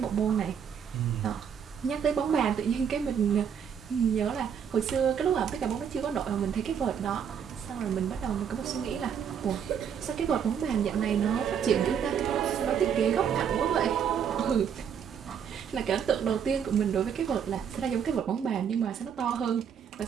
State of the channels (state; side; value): quieter; left; 7.8 dB